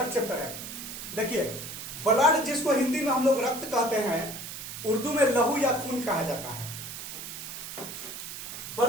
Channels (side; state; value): right; noise; hiss, 9 dB below the sound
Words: चैप्टर है। देखिए, ब्लड जिसको हिंदी में हम लोग रक्त कहते हैं, उर्दू में लहू या खून कहा जाता है।